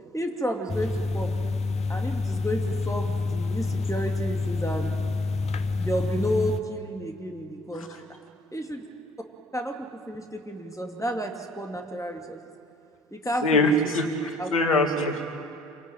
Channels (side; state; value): both; normal; correlation 0.66